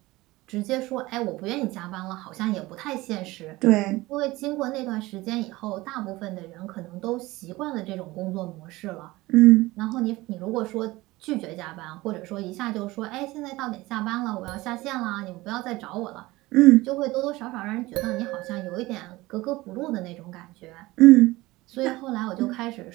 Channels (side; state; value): left; quieter; 19.7 dB